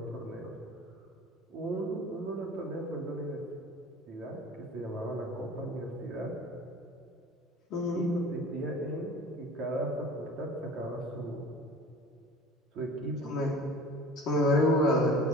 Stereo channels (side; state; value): both; normal; correlation 0.42